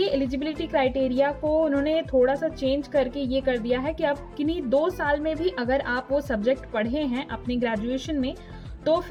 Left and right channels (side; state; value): both; identical; correlation 1.00